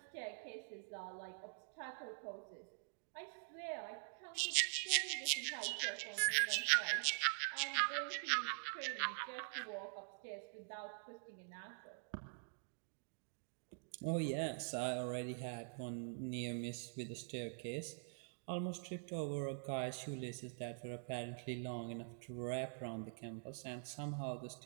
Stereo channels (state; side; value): silent; left; digital silence